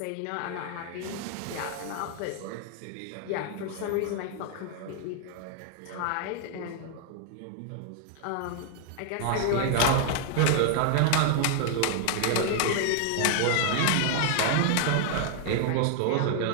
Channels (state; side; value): different; both; correlation 0.00